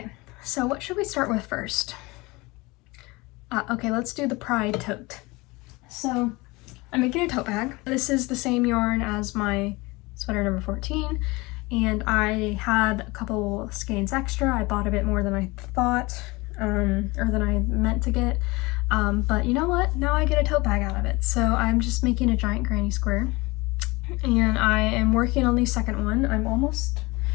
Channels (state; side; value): quieter; right; 23.4 dB